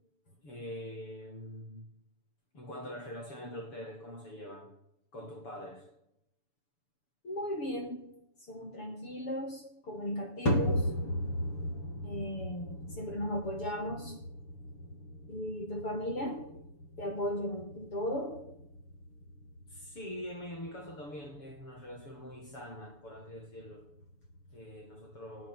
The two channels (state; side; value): late; right; 7.0 ms